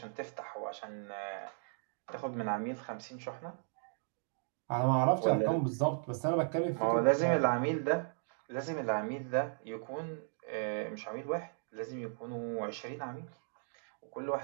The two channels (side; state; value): left; silent; digital silence